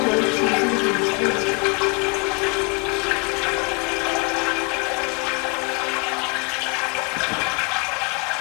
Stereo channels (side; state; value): right; quieter; 31.9 dB